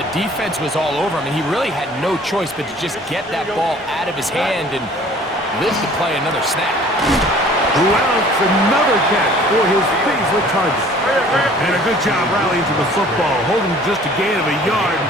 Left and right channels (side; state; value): both; normal; correlation 0.51